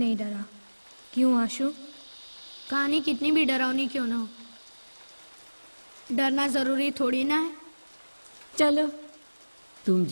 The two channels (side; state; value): both; inverted; correlation -1.00